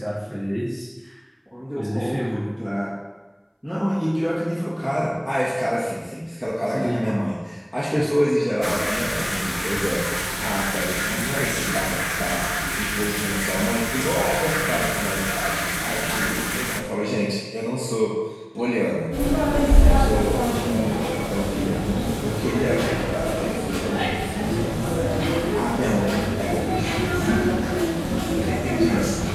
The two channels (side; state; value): both; identical; correlation 1.00